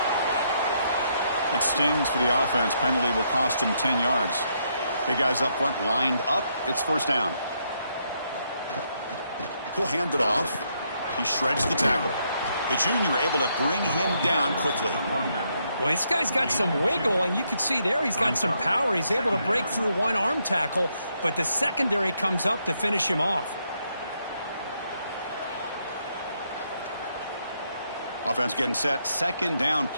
It stings for the offense. Penalty will cost him 10 yards. Big guys up front lined up. It's first down. He'll hand it off. He shreds the tackle. The junior able to bring him down quickly. Well, this guy's got some wiggle, and you can see there he's got some power. He's able to break through one arm tackle, but the secondary comes up to finish him off. Offense getting set. Second down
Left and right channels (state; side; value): inverted; both; correlation -0.76